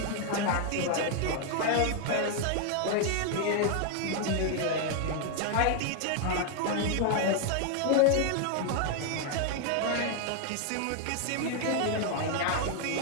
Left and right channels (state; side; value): different; both; correlation 0.00